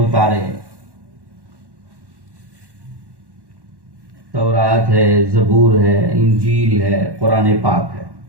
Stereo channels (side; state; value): left; late; 1.1 ms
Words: تورات ہے، زبور ہے، انجیل ہے، قرآن پاک ہے،